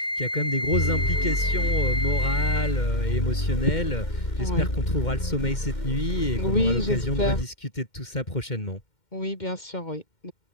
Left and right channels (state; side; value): late; right; 2.1 ms